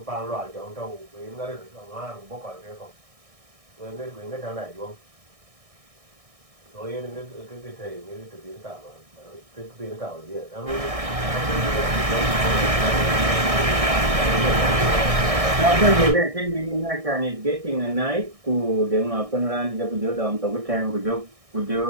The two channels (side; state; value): left; late; 1.6 ms